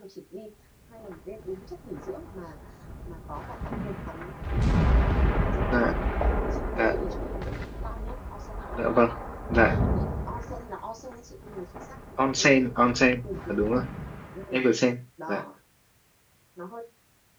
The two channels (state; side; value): identical; both; correlation 1.00